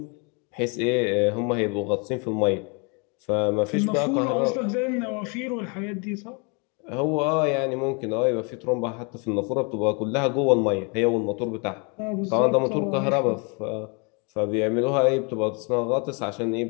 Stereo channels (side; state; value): right; quieter; 33.6 dB